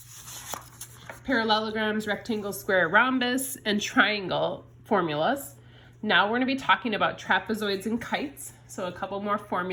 parallelograms, rectangle, square, rhombus, and triangle formulas. Now we're going to be talking about trapezoids and kites, so a couple more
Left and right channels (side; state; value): both; identical; correlation 1.00